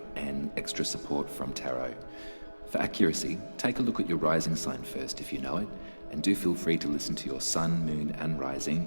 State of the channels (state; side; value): inverted; both; correlation -1.00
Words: and extra support from tarot. For accuracy, take a look at your rising sign first if you know it, and do feel free to listen to your sun, moon and